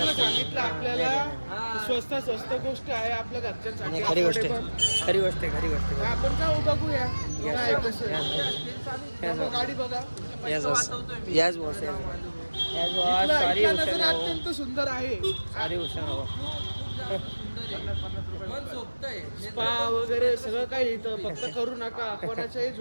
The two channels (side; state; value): both; inverted; correlation -1.00